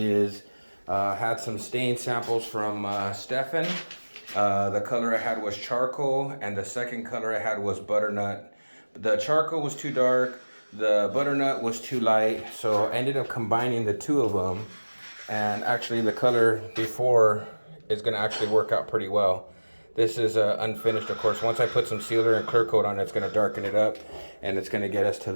had some stain samples from Stefan. The color I had was charcoal, and the second color I had was butternut. The charcoal was too dark, the butternut was too light, so I ended up combining the two of them. And actually the color before is going to actually work out pretty well. This is unfinished, of course. Once I put some sealer and clear coat on it, it's going to darken it up, and it's going to get us to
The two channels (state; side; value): inverted; both; correlation -1.00